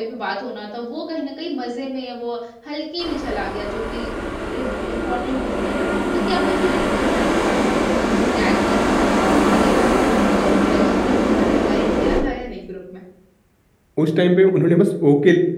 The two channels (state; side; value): identical; both; correlation 1.00